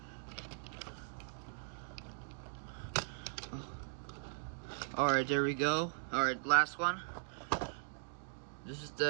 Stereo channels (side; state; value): left; silent; digital silence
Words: Oh. Alright, there we go. Alright, last one. This is